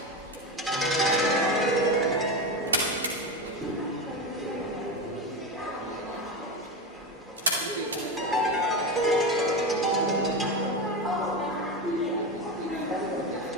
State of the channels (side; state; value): both; normal; correlation 0.18